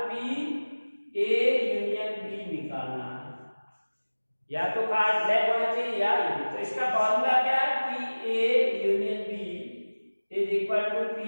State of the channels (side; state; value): both; inverted; correlation -1.00